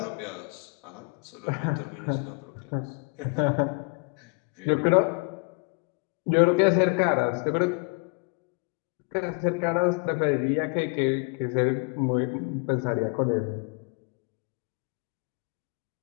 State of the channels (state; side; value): quieter; right; 34.7 dB